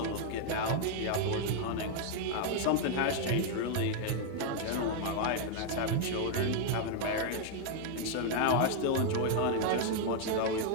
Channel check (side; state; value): both; different; correlation 0.00